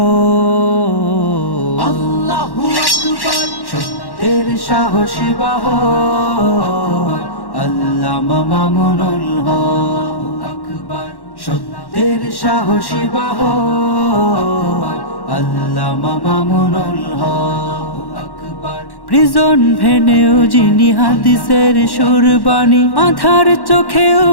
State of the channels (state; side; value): late; right; 1.1 ms